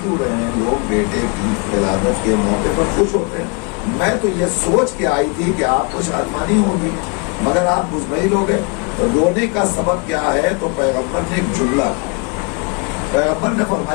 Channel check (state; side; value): quieter; right; 32.9 dB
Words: کیوں رہے ہیں؟ لوگ بیٹے کی ولادت کے موقع پر خوش ہوتے ہیں۔ میں تو یہ سوچ کے آئی تھی کہ آپ کو شادمانی ہوگی، مگر آپ مطمئن ہو گئے۔ رونے کا سبب کیا ہے؟ تو پیغمبر نے ایک جملہ، پیغمبر نے